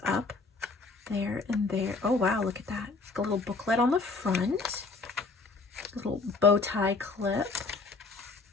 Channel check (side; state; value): right; quieter; 4.0 dB